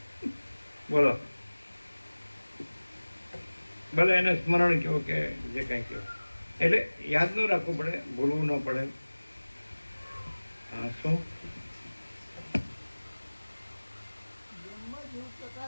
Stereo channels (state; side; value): inverted; both; correlation -1.00